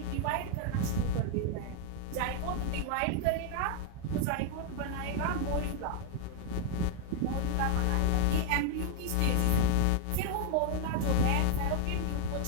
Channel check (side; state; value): both; different; correlation 0.00